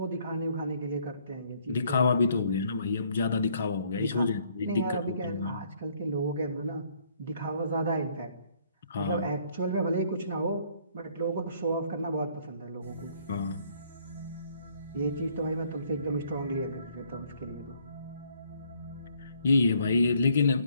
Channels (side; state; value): both; inverted; correlation -0.65